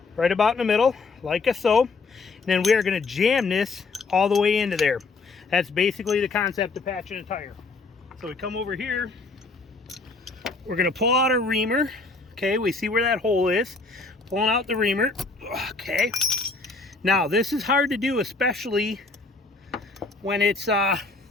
Right about in the middle, like so. And then we are going to jam this all the way into there. That's basically the concept of patching a tire. So we come over here. We're going to pull out our reamer. Okay, we see where that hole is. Pulling out the reamer. Okay. Now, this is hard to do, especially when it's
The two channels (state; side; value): quieter; right; 3.9 dB